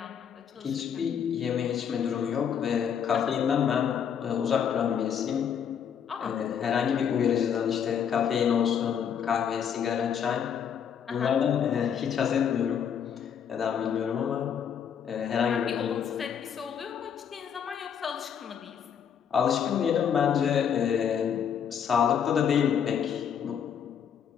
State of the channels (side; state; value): right; quieter; 8.0 dB